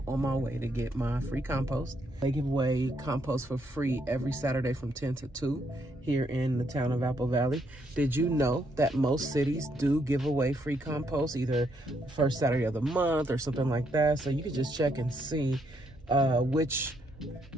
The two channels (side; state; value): both; normal; correlation 0.74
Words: on my way to get my free compost. They give away compost for free every Saturday from 10 to 2 here in the town of Apple Valley. Did you know that most cities do give away free compost either the first Saturday of the month or something like that? So you can just check and see which